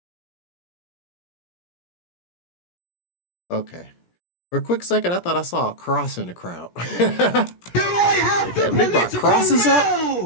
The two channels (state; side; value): late; right; 17 ms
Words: Okay. For a quick second, I thought I saw a cross in the crowd. Do I have the They brought crosses up?